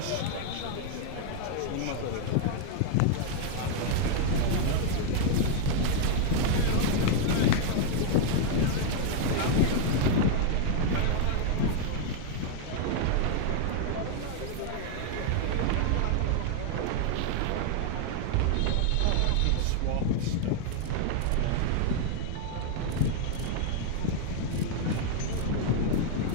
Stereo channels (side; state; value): both; different; correlation 0.00